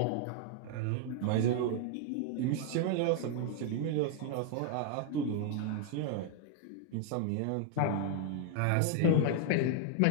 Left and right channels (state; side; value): different; both; correlation 0.00